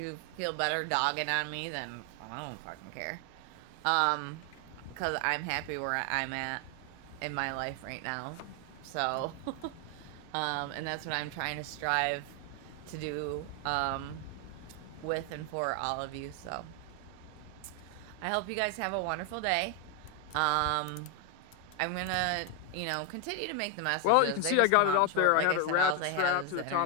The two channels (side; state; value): both; different; correlation 0.01